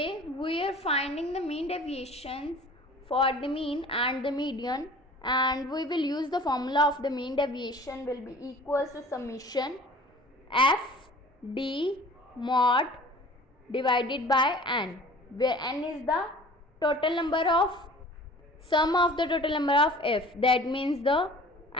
we are finding the mean deviations for the mean and the median, and we will use the formula of the mean deviation will be equals to summation f d mod divided by n, where n is the total number of sum of the total number of f, that means the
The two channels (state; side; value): normal; both; correlation 0.46